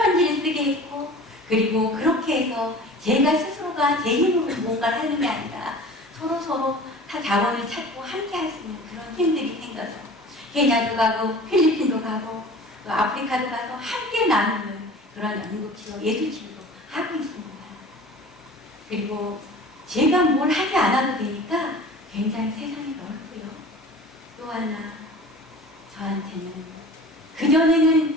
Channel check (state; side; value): normal; both; correlation 0.41